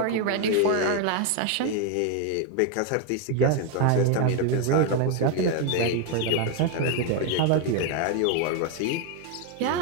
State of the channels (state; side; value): different; both; correlation 0.01